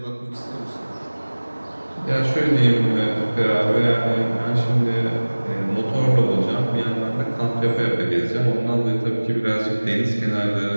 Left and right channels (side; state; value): both; inverted; correlation -1.00